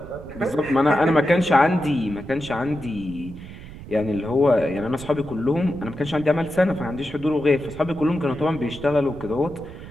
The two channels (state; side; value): noise; right; rumble, 15 dB below the sound